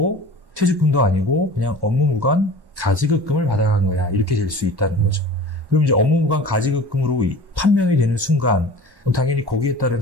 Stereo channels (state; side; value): late; left; 1.1 ms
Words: 퇴직금도 아니고 그냥 업무무관 가지급금을 받아간 거야. 이렇게 될 수 있다는 거죠. 그럼 이제 업무무관 가지급금으로 판명이 되는 순간 당연히 거기에 따른